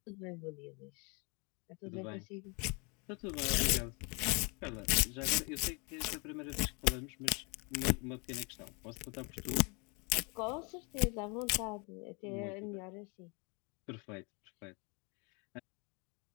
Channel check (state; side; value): quieter; right; 32.2 dB